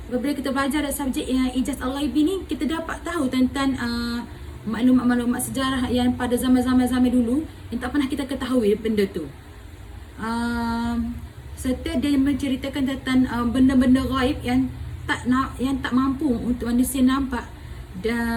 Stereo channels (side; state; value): both; identical; correlation 1.00